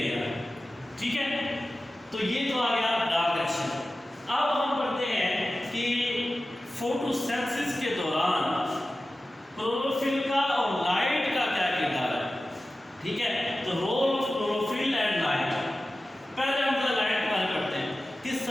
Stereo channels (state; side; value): normal; both; correlation 0.95